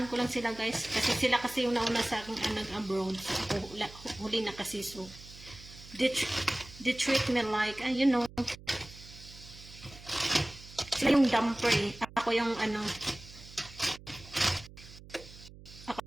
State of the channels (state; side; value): noise; right; hum, 18 dB below the sound